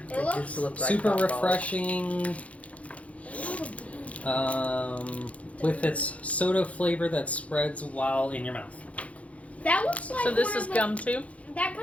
It It looks just looks like Super hot balls. refreshing. With its soda flavor that spreads while in your mouth. That looks like So this one is of the- gum too? That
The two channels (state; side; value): late; right; 0.065 ms